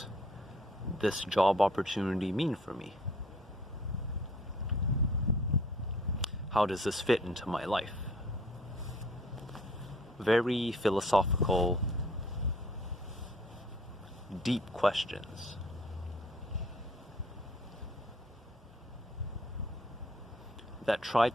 this job opportunity mean for me? How does this fit into my life? Very philosophical, deep questions. That try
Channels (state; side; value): normal; both; correlation 0.57